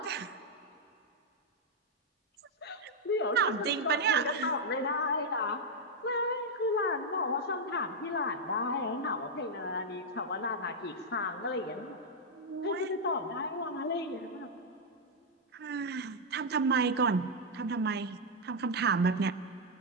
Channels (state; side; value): normal; both; correlation -0.01